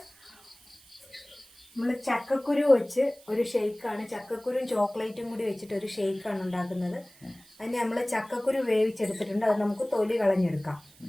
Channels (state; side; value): noise; right; hiss, 26 dB below the sound